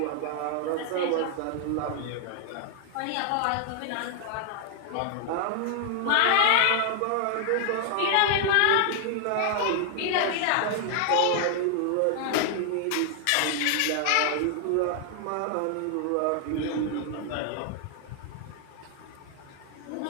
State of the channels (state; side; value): different; both; correlation 0.00